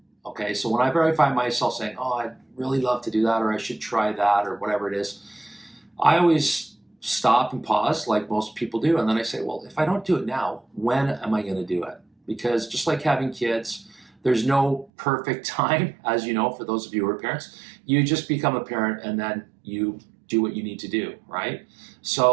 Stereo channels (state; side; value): drops out; left; at 14.9 s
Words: Okay, so whenever I find myself saying, oh, I'd really love to do that, or I should try that, or whatever it is, I always stop and pause like most people do. And then I say, well, if I don't do it now, when am I going to do it? Because just like having kids, there's no perfect time, as you know, for those of you who are parents. You just become a parent and then you do what you need to do, right?